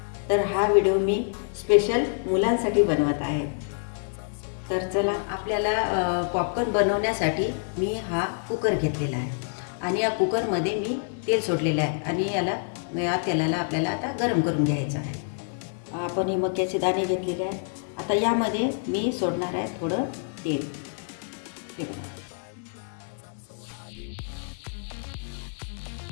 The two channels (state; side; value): silent; right; digital silence